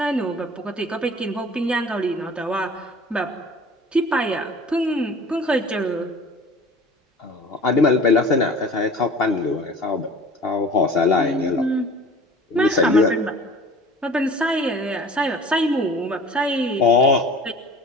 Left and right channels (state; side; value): normal; both; correlation 0.44